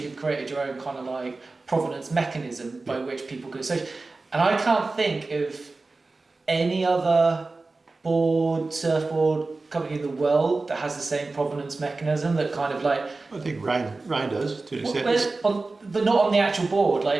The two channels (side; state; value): left; quieter; 3.5 dB